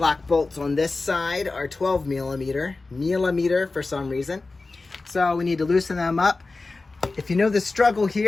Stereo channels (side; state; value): right; quieter; 3.6 dB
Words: bolts on this side are 12 millimeter for some reason. So we need to loosen them up. If you know the struggle